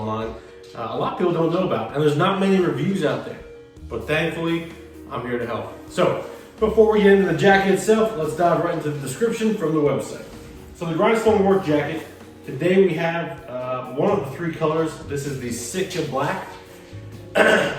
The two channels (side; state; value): both; identical; correlation 1.00